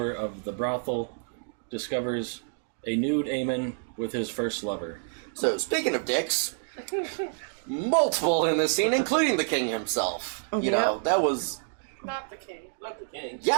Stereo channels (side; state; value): left; silent; digital silence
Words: of the brothel, discovers a nude Aemon with his first lover. So, speaking of dicks, multiple in this scene, including the king himself. You know, that was... Not the king. Not the king. Yes,